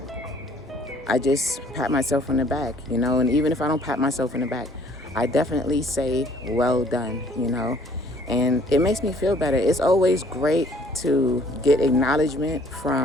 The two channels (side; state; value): both; normal; correlation 0.58